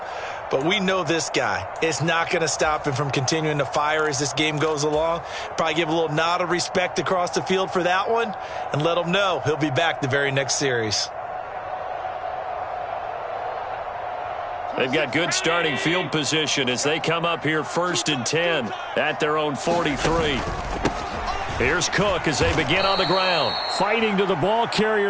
But we know this guy. It's not going to stop him from continuing to fire as this game goes along. Probably give a little nod of respect across the field for that one and let him know he'll be back the very next series. They've got good starting field position as they come up here 1st and 10 at their own 43. Here's Cook as they begin on the ground. Fighting to the ball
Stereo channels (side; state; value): both; identical; correlation 1.00